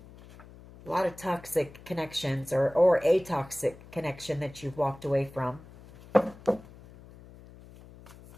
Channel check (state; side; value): noise; left; hum, 20 dB below the sound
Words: lot of toxic connections or a toxic connection that you've walked away from.